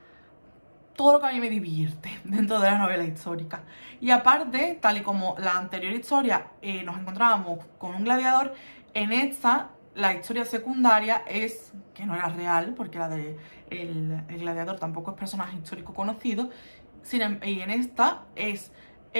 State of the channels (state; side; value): inverted; both; correlation -1.00